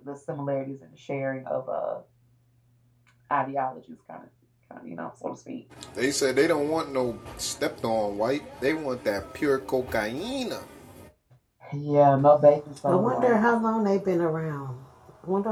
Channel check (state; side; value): identical; both; correlation 1.00